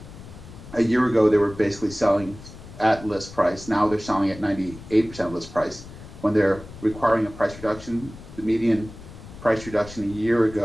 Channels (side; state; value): left; noise; rumble, 16 dB below the sound